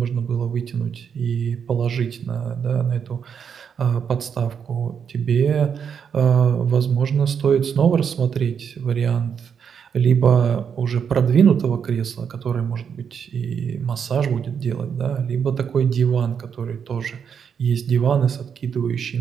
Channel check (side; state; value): left; quieter; 7.2 dB